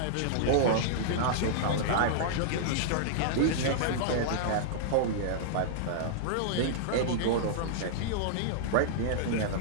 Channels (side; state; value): both; different; correlation -0.01